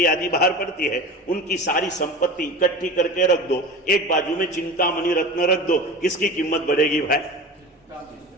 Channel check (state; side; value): normal; both; correlation 0.32